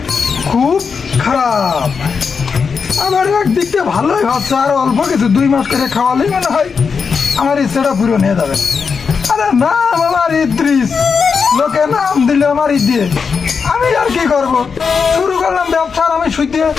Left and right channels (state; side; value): quieter; right; 5.7 dB